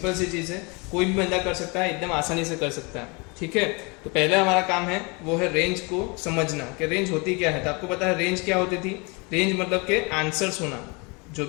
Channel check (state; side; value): quieter; right; 29.6 dB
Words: सी चीज़ है, कोई भी बंदा कर सकता है, एकदम आसानी से कर सकता है। ठीक है, तो पहले हमारा काम है वो है रेंज को समझना कि रेंज होती क्या है। तो आपको पता है रेंज क्या होती थी। रेंज मतलब के आंसर्स होना, जो